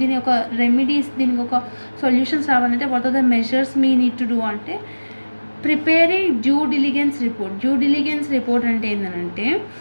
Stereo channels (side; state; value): both; inverted; correlation -1.00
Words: దీని ఒక రెమెడీస్, దీనికి ఒక సొల్యూషన్స్ రావాలంటే what are the measures we need to do అంటే preparing due diligence report. Due diligence report అంటే ఏంటంటే